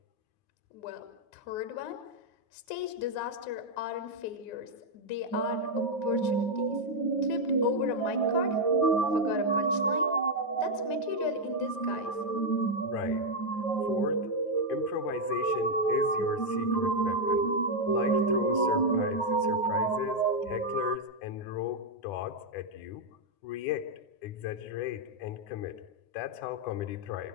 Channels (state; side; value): late; right; 9.5 ms